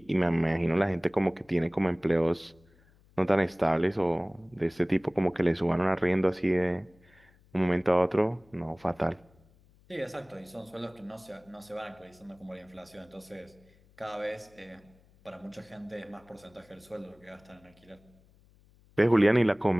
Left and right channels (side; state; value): left; noise; hum, 30 dB below the sound